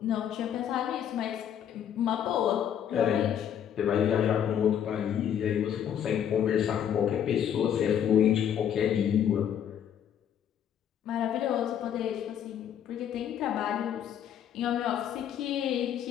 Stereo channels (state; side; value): quieter; right; 9.3 dB